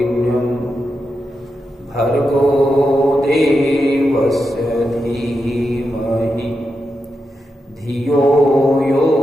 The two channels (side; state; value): both; normal; correlation 0.87